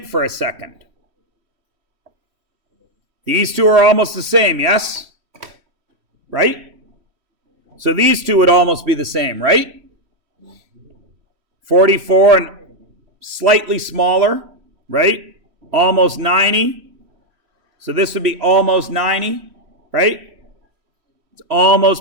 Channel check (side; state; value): left; late; 3.1 ms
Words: for a second. These two are almost the same, yes? Right? So these two would almost be the same, right? 44 and slightly smaller, right? Almost 90. So this would be almost 90, right? It's